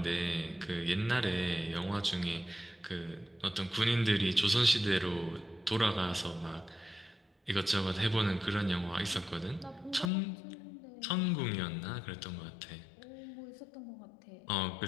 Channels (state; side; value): drops out; right; at 10.1 s